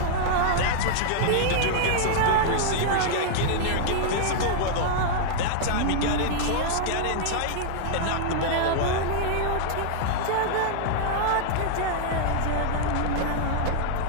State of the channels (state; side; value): different; both; correlation -0.01